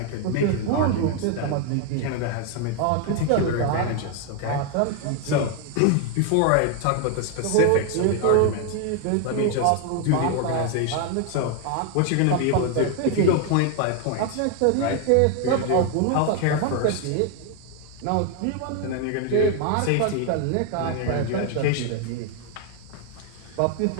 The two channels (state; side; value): different; both; correlation 0.01